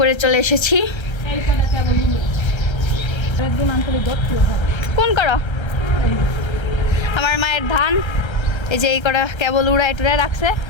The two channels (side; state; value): right; late; 1.3 ms